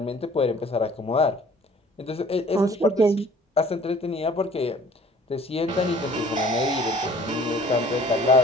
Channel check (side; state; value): both; normal; correlation 0.52